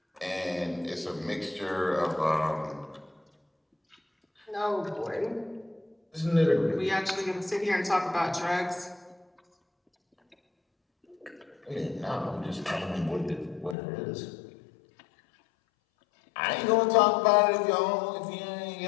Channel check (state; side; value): drops out; right; at 13.8 s